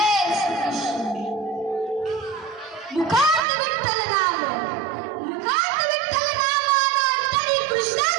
श्री कृष्ण. मुखात विठ्ठल नाम, मुखात विठ्ठल नाम, तरी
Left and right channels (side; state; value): left; drops out; at 3.5 s